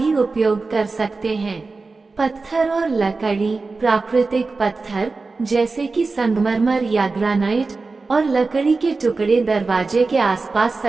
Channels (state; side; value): quieter; left; 3.9 dB